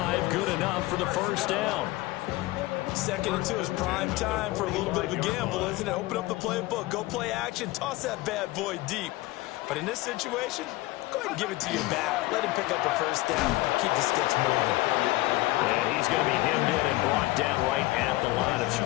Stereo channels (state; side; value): quieter; right; 19.3 dB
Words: good enough for the first down. 2nd and 2 is prime time for a little bit of a gamble, isn't it? Open up the playbook, go play action, toss that bad boy deep. But in this situation, go ahead and give it to your back. Let him pick up the first down. Keep the sticks moving. And he's going to be hemmed in and brought down right at the line of